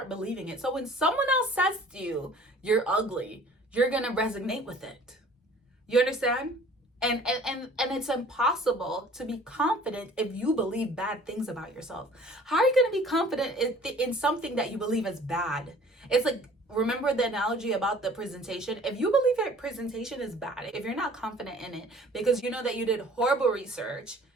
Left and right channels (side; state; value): both; normal; correlation 0.50